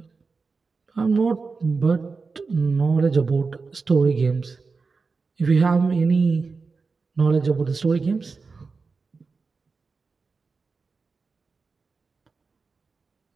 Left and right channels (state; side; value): quieter; left; 4.5 dB